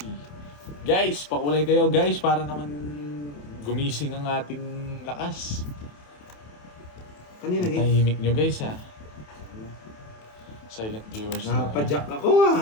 Guys, pakulay kayo guys para naman gumising ang ating lakas. Kanina hit. Tahimik nyo guys ha. Silent viewers na. Napadyak ako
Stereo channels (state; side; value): late; right; 27 ms